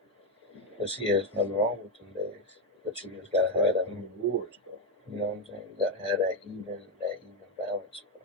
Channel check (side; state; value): both; normal; correlation 0.07